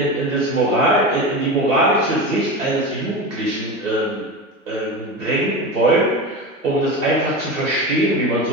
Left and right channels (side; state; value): both; normal; correlation 0.25